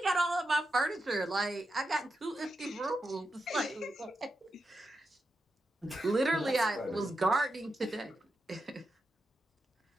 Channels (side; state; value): both; normal; correlation 0.87